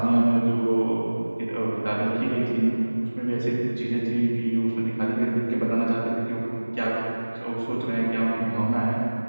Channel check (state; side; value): inverted; both; correlation -1.00